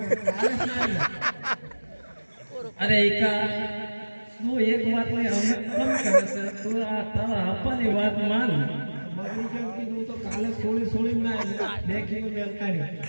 અરે એકા તું એક વાત ને અમે કમ કરે છે. તું આ તારા આપવાની વાત માન. બગડી કેમ કીધું તો કાલે સોળી ના દેખીને મેલ કાઢી.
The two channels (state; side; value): inverted; both; correlation -1.00